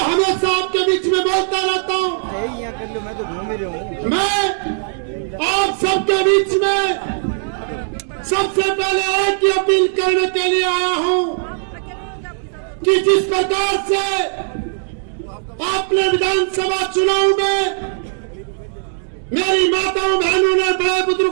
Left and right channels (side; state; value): left; silent; digital silence